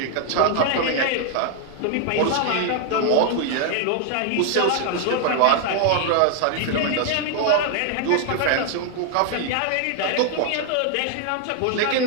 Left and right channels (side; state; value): both; different; correlation 0.00